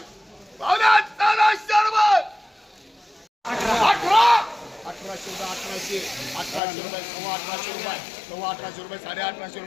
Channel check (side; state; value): right; drops out; at 6.6 s